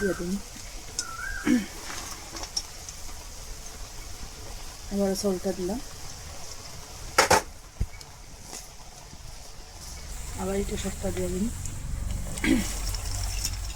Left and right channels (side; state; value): both; identical; correlation 1.00